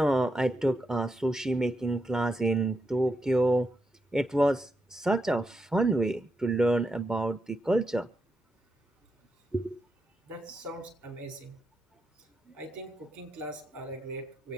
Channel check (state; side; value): normal; both; correlation 0.84